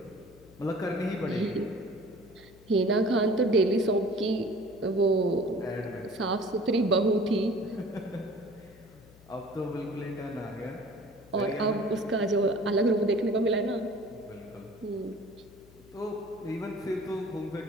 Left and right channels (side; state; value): left; noise; hum, 24 dB below the sound